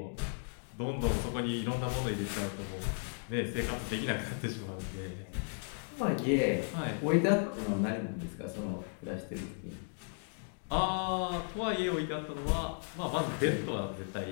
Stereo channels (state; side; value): silent; right; 54 dB below the other